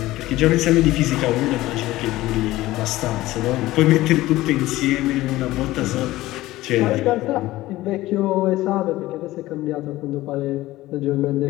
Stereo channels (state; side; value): quieter; right; 17.1 dB